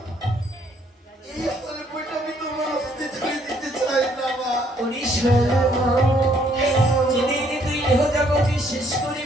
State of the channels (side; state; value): both; normal; correlation 0.66